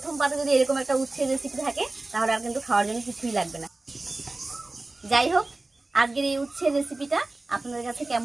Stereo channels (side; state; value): left; quieter; 3.1 dB